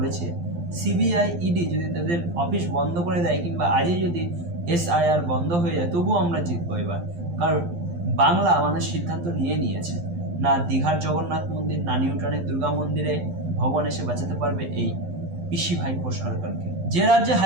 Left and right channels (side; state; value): left; late; 12 ms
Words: সিবিআই ইডি যদি তাদের অফিস বন্ধ করে দেয় কিংবা আজই যদি SIR বন্ধ হয়ে যায়, তবুও আমরা জিতবো এবার। কারণ বাংলা মানুষ সিদ্ধান্ত নিয়েছে। না দীঘার জগন্নাথ মন্দির, না নিউটনের দুর্গা মন্দিরে ভগবান এসে বাঁচাতে পারবে এই পিসি ভাইপো সরকারকে। যে রাজ্যে